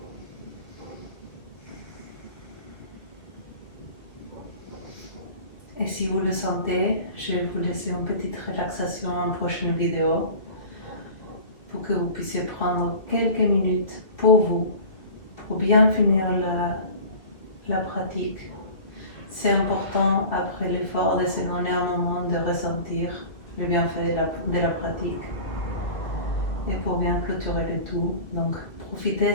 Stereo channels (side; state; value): right; late; 2.0 ms